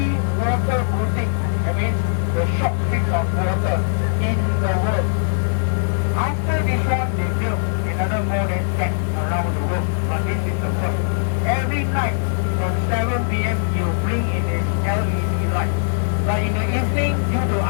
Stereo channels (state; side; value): silent; right; digital silence